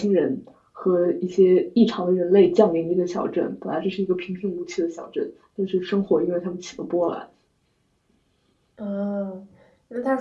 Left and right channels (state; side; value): identical; both; correlation 1.00